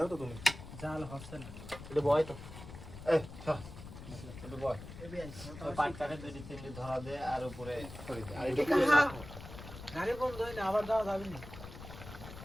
তো তুমি জাল হচ্ছে না এটা বয় তো এটা বয় পাট কাটে দুই তিনটে ধরা দে আর উপরে ছড়ি দে আর এটা গাড়ি বন্ধ হয় না আবার যাওয়া যাবে না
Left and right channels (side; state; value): left; noise; rumble, 13 dB below the sound